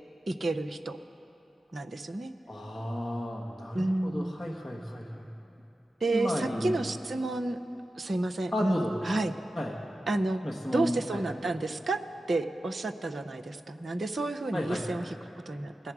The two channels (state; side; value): normal; both; correlation 0.93